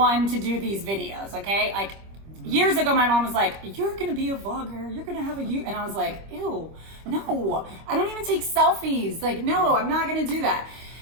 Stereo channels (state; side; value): late; left; 25 ms